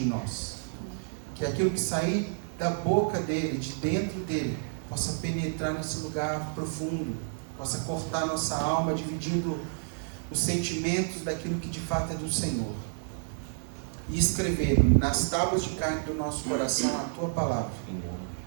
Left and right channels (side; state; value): left; silent; 58 dB below the other